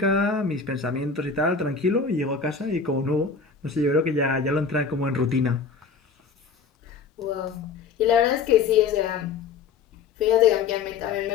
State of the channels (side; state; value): right; quieter; 5.3 dB